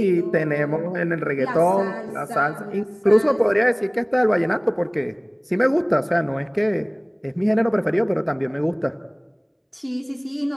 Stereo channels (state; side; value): identical; both; correlation 1.00